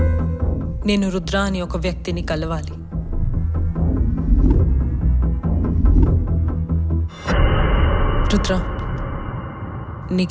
నేను రుద్ర అని ఒక వ్యక్తిని కలవాలి. రుద్ర,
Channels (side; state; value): both; identical; correlation 1.00